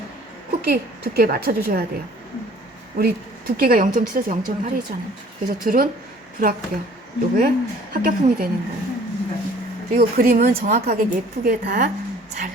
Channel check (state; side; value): normal; both; correlation 0.53